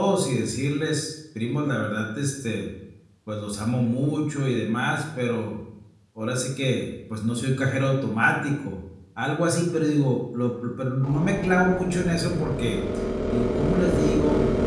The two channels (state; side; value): identical; both; correlation 1.00